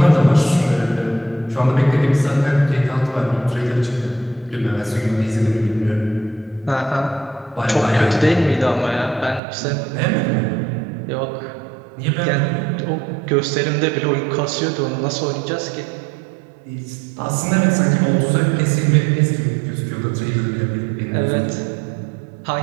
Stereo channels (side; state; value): left; drops out; at 9.4 s